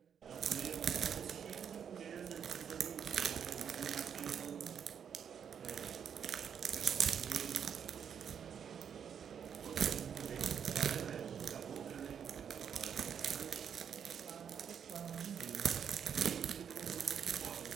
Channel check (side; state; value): left; quieter; 7.9 dB